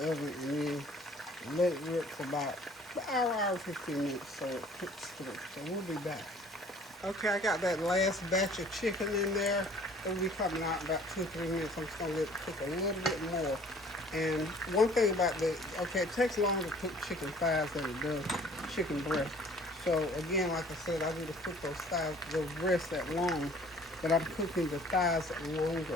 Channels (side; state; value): both; normal; correlation 0.53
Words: oven, and then let it rip for about an hour, 15 minutes so it cooks through. So we'll be back. Okay, I got that last batch of chicken in there. It'll be coming out in about 2-3 minutes. I'm just going to let it cook a little bit more. And one thing about it takes longer to cook chicken thighs than it does chicken breast. So again, like I said, I need to cook those breasts that long, but I'm cooking the thighs